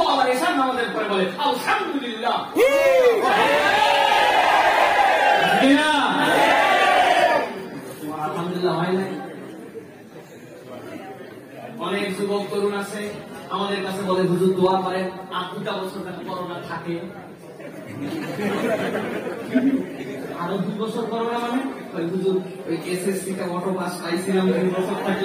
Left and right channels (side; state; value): both; identical; correlation 1.00